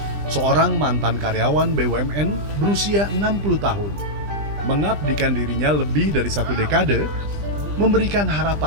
seorang mantan karyawan BUMN berusia 60 tahun, mengabdikan dirinya lebih dari satu dekade, memberikan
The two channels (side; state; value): left; late; 20 ms